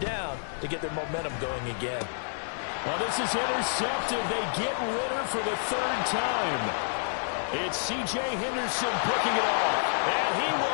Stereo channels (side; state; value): right; silent; digital silence